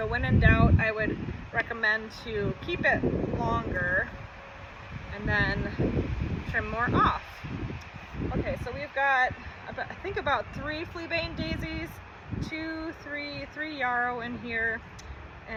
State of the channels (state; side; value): identical; both; correlation 1.00